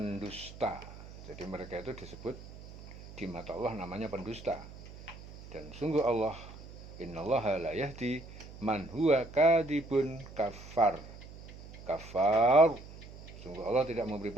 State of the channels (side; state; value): right; noise; hum, 16 dB below the sound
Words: Jadi mereka itu disebut di mata Allah namanya pendusta. Dan sungguh Allah, innallaha la yahdi man huwa kadibun kafar. Kafar, sungguh Allah tidak memberi